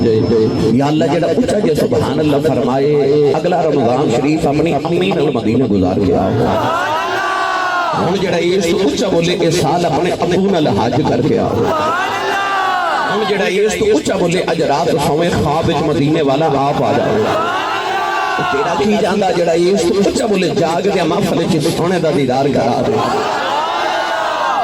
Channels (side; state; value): right; noise; rumble, 29 dB below the sound